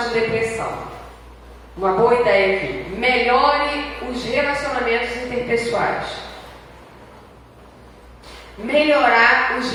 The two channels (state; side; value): identical; both; correlation 1.00